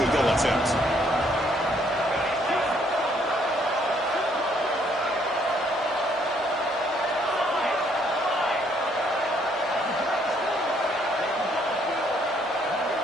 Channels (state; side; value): normal; both; correlation 0.67